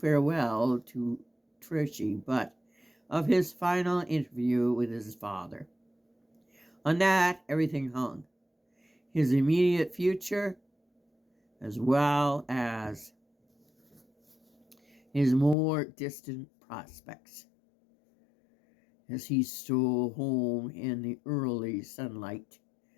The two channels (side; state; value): right; drops out; at 15.6 s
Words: to Trichy, but of his final interview with his father. On that, everything hung. His immediate future, as well as his more distant prospects. As he stole home in the early sunlight